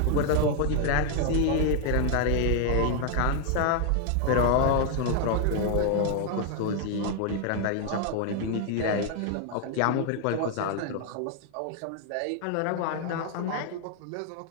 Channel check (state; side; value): different; both; correlation 0.00